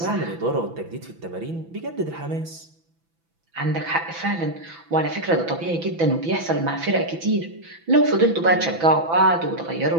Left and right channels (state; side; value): late; left; 6.0 ms